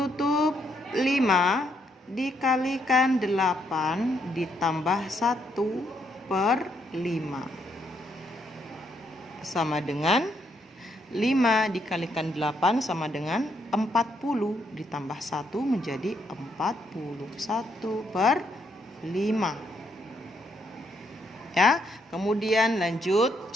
5 dikalikan 8 ditambah 1/5 sama dengan 5 dikalikan 8 sama dengan 40 ditambah 1 menjadi 41/5. Ya, kemudian lanjut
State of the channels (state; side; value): normal; both; correlation 0.75